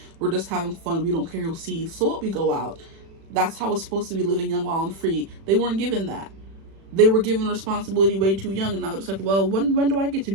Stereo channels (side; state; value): left; late; 36 ms